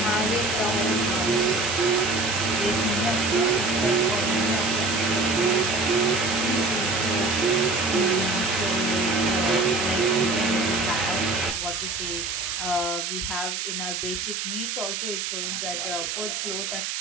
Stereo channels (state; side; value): noise; right; hiss, 3 dB below the sound